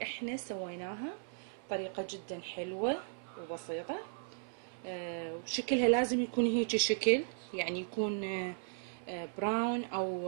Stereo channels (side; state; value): left; silent; 54 dB below the other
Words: احنا سويناها، طريقة جدا حلوة وبسيطة. وشكلها لازم يكون هيك شكل، يعني يكون براون